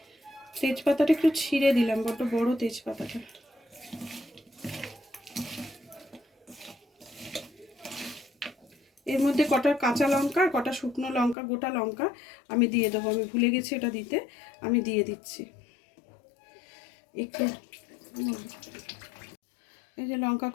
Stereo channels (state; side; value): drops out; right; at 11.4 s